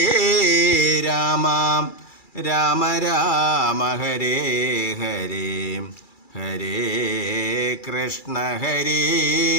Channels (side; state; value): right; late; 2.3 ms